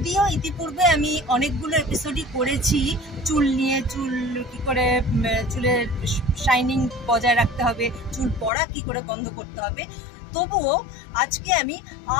ইতিপূর্বে আমি অনেকগুলো এপিসোডই করেছি চুল নিয়ে, চুল কি করে চুলের শাইনিং বজায় রাখতে হবে, চুল পড়া কি করে বন্ধ করতে হবে, তবুও আজকে আমি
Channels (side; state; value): right; drops out; at 8.5 s